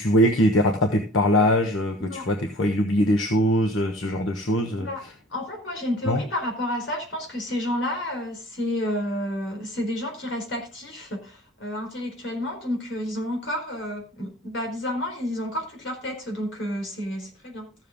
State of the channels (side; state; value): both; normal; correlation 0.46